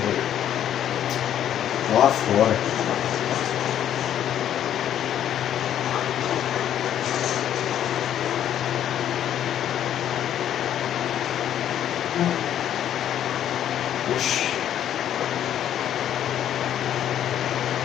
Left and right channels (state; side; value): quieter; right; 10.5 dB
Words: Lá fora. Oxi.